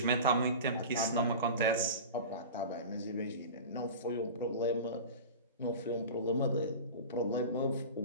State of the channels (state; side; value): inverted; both; correlation -0.32